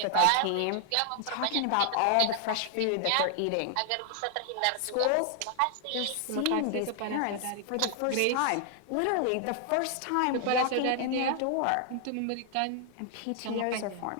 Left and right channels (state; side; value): different; both; correlation 0.00